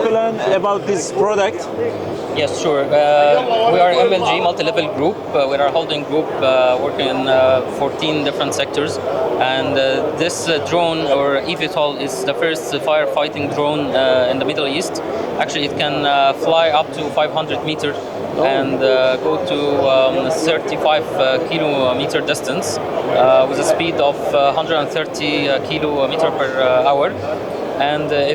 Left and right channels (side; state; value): both; identical; correlation 1.00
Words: about this product? Yes, sure. We are MLG, multi-level group. We are a holding group working in 14 different sectors. And this drone, or eVTOL, is the first firefighting drone in the Middle East. Actually, it can fly up to 500 meters and go to 35 kilometer distance with a speed of 130 kilometer per hour. And